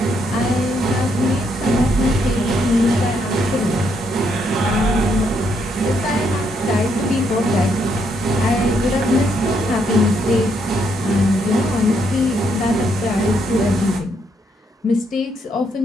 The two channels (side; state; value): both; normal; correlation 0.75